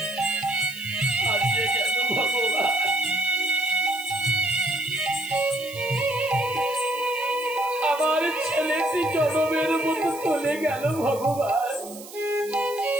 আমার ছেলেটি জনমের মতো চলে গেল ভগবান।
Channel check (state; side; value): noise; right; hiss, 16 dB below the sound